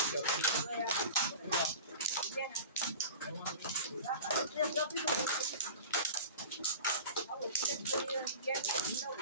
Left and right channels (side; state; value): both; inverted; correlation -0.37